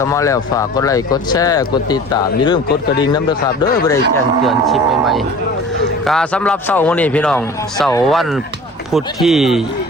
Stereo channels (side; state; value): both; normal; correlation 0.42